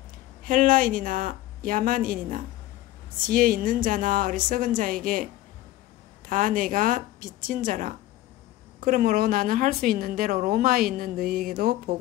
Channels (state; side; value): quieter; right; 15.6 dB